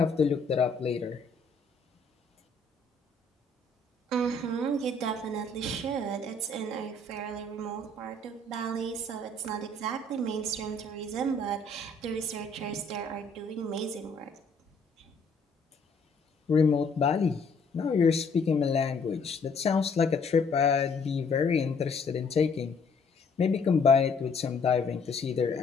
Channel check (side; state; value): right; quieter; 3.5 dB